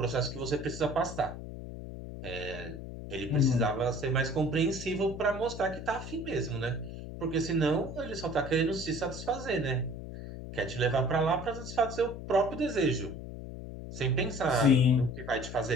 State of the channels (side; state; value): left; noise; hum, 10 dB below the sound